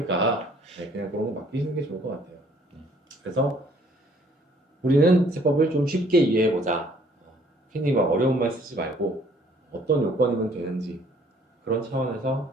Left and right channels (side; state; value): both; normal; correlation 0.60